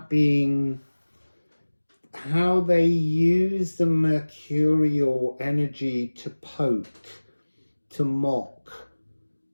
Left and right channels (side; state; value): both; inverted; correlation -1.00